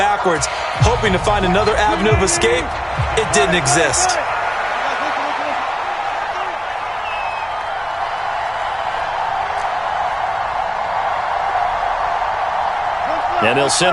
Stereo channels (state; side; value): identical; both; correlation 1.00